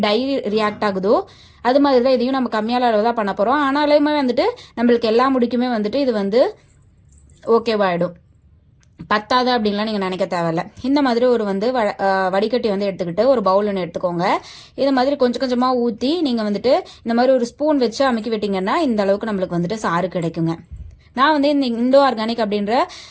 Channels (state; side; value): identical; both; correlation 1.00